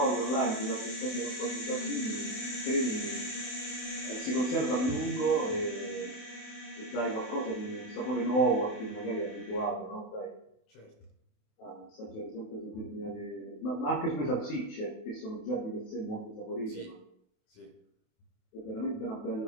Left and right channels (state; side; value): late; right; 28 ms